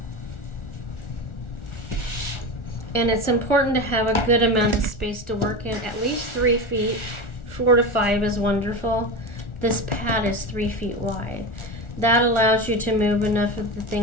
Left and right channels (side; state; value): right; late; 1.4 ms